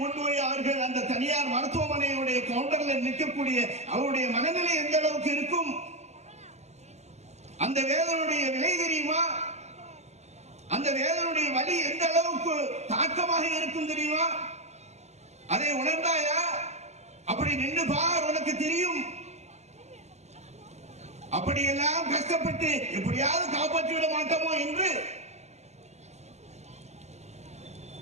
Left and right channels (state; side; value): late; left; 0.32 ms